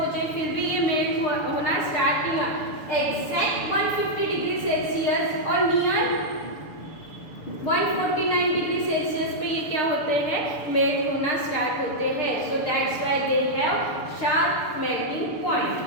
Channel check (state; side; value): late; right; 6.8 ms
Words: फिर भी ये मेल्ट होना स्टार्ट नहीं हुआ। एग्जैक्ट 150 डिग्री सेल्सियस और नियर 149 डिग्री सेल्सियस पे ये क्या होते हैं, मेल्ट होना स्टार्ट होते हैं। So that's why they have sharp melting point.